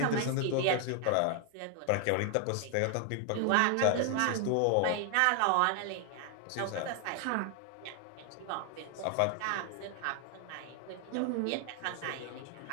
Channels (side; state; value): both; different; correlation 0.00